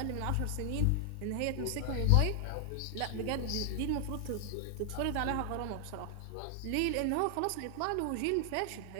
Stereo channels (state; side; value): different; both; correlation 0.00